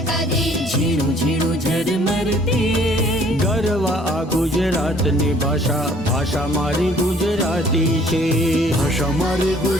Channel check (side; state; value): both; normal; correlation 0.58